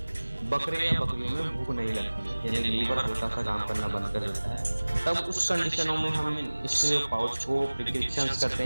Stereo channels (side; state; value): both; inverted; correlation -1.00